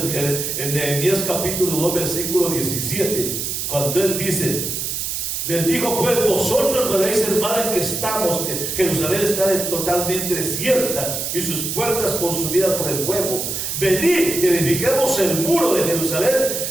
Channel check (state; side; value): noise; right; hiss, 3 dB below the sound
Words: Nehemías capítulo 2 versículo 17, cuando él dice, les dijo pues, vosotros veréis el mal en que estamos, que Jerusalén está totalmente desierta y sus puertas consumidas por el fuego. Venid y edifiquemos el muro de Jerusalén